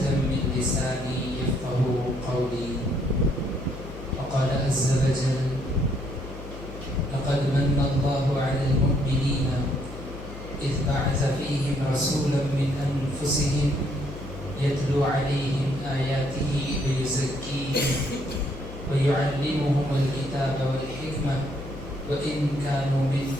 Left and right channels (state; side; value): noise; left; hum, 12 dB below the sound